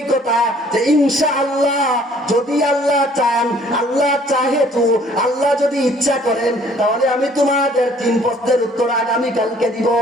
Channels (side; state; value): both; normal; correlation 0.58